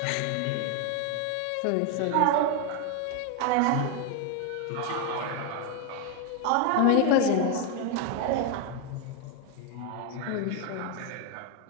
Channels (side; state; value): both; different; correlation 0.01